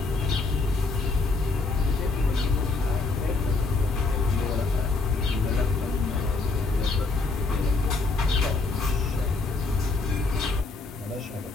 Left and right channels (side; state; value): right; quieter; 3.7 dB